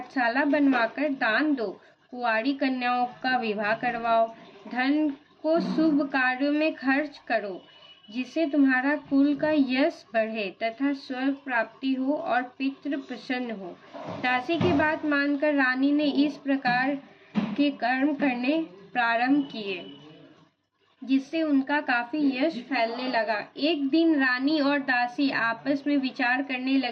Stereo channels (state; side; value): identical; both; correlation 1.00